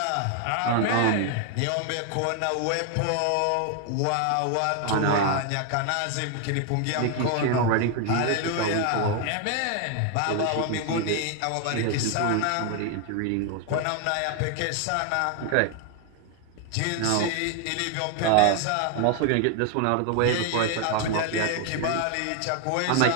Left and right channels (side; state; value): both; different; correlation 0.00